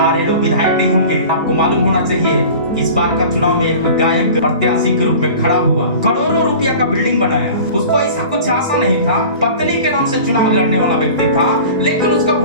लोग विधायक नहीं होंगे। आपको मालूम होना चाहिए इस बार का चुनाव में एक गायक प्रत्याशी के रूप में खड़ा हुआ, करोड़ों रुपया का बिल्डिंग बनाया। उसको ऐसा कुछ आशा नहीं था, पत्नी के नाम से चुनाव लड़ने वाला व्यक्ति था, लेकिन उसका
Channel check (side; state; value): both; inverted; correlation -0.40